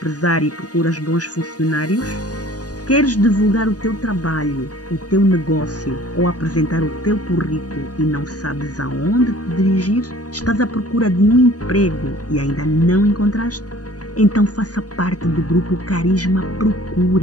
e procuras bons funcionários? Queres divulgar o teu trabalho, o teu negócio ou apresentar o teu currículo e não sabes aonde te dirigir? Estás à procura de um emprego e ainda não encontraste? Então faça parte do grupo Carisma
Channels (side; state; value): right; late; 0.68 ms